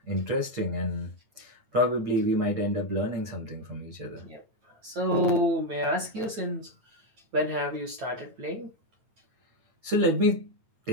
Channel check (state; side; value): late; left; 9.1 ms